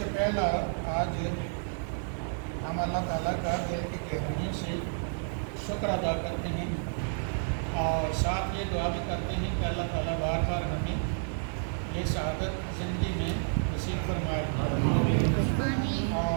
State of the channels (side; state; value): left; silent; digital silence